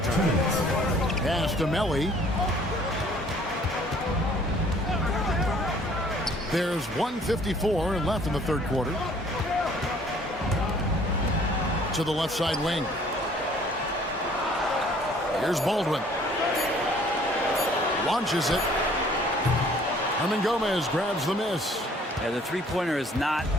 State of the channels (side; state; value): both; normal; correlation 0.57